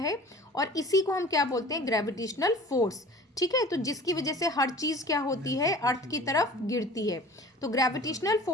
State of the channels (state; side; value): normal; both; correlation 0.43